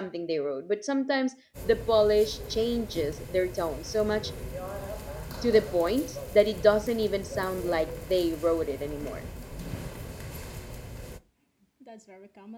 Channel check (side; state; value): both; identical; correlation 1.00